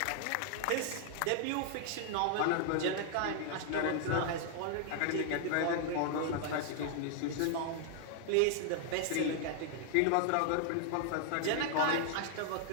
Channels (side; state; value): both; different; correlation 0.00